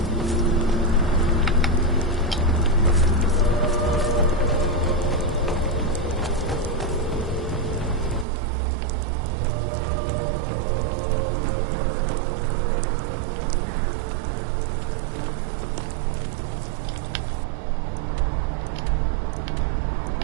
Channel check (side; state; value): left; drops out; at 8.2 s